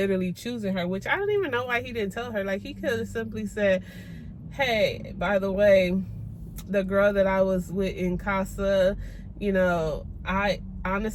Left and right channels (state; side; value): identical; both; correlation 1.00